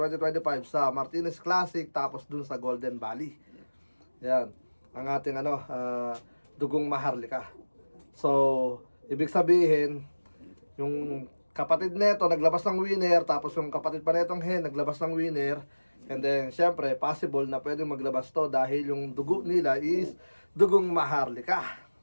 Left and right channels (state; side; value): inverted; both; correlation -1.00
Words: sa Martinez Classic, tapos dun sa Golden Valley. Yan, ang ating dugong maharlika. So, ibig sabihin, yung kapatid nito naglabas ng winner, tapos yung kapatid pa netong Hen naglabas ng winner. And then, syempre, possible na pwedeng maglabas to dahil yung dugo nila is dugong maharlika.